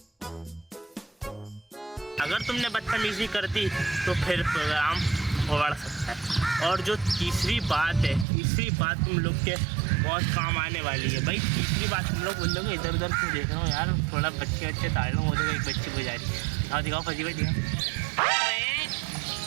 अगर तुमने बदतमीजी कर दी तो फिर प्रोग्राम बढ़ सकता है। और जो तीसरी बात तुम लोग के बहुत काम आने वाली है। भाई तीसरी बात, तुम लोग बोल दोगे इधर उधर क्यों देख रहा हूँ यार, थोड़ा बच्चे ताड़ लो, वो तो एक बच्ची गुजारी दिखाओ फजी भाई दिखाओ।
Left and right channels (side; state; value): left; drops out; at 8.2 s